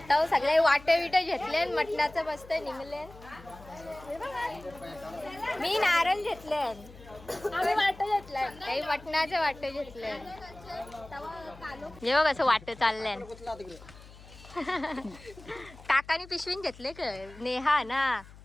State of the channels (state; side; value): noise; left; hum, 20 dB below the sound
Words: सगळे वाट विट घेतले. मटणाचं मस्त निघले. मी नारळ घेतले. आम्ही वाट घेतलंय. काही मटणाचे वाट घेतले. जेव्हा कसं वाट चाललंय. काकानी पिशवीन घेतले का? नेहा ना.